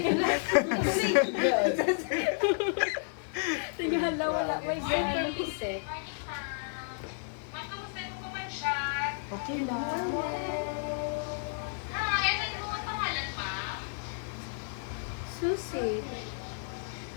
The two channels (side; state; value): right; silent; digital silence